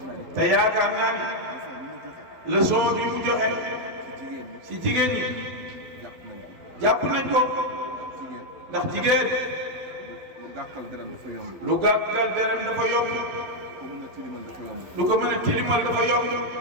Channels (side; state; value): left; late; 12 ms